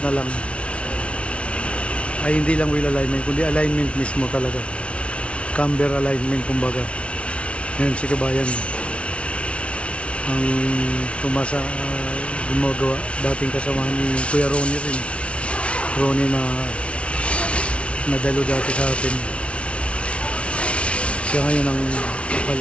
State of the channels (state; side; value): late; right; 0.061 ms